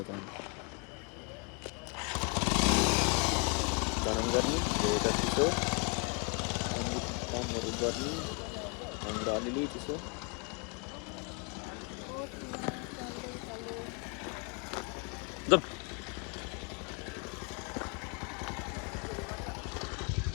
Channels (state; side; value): quieter; right; 34.2 dB